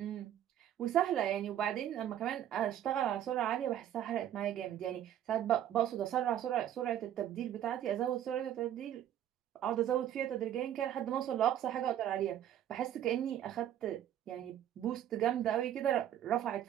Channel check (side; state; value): left; quieter; 11.1 dB